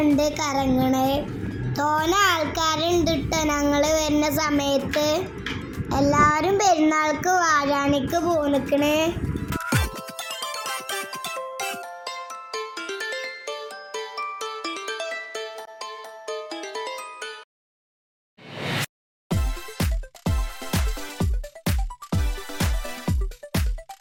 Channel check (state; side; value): identical; both; correlation 1.00